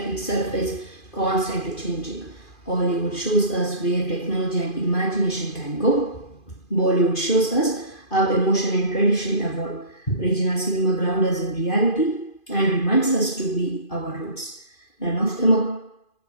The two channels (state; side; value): late; right; 2.5 ms